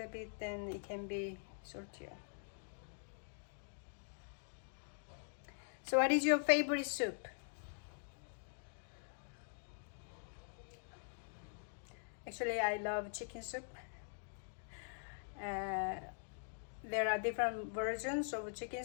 bit, then it can be saltier. So what is your favorite soup? Actually, I love chicken soup. There are different versions of chicken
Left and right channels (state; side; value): silent; right; digital silence